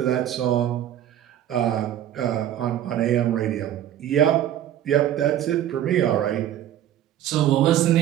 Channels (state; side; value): quieter; left; 11.6 dB